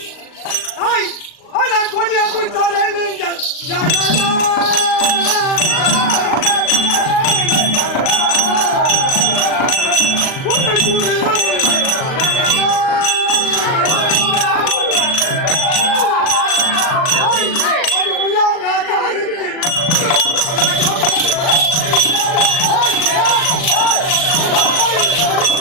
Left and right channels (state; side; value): late; right; 38 ms